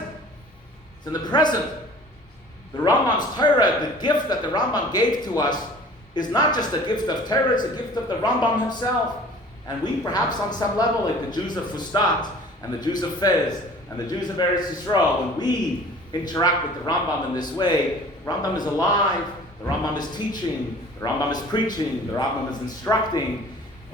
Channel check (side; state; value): both; normal; correlation 0.47